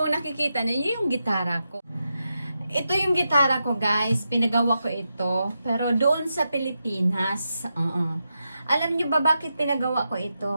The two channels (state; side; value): inverted; both; correlation -0.87